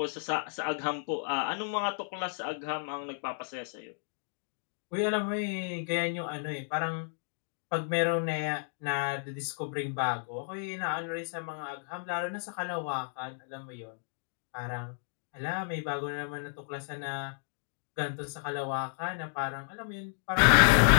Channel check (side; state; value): right; silent; digital silence